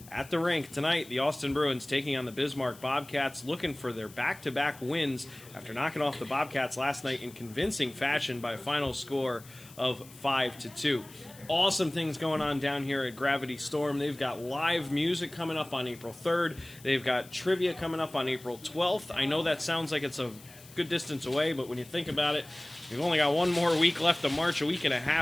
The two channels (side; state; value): left; noise; hiss, 21 dB below the sound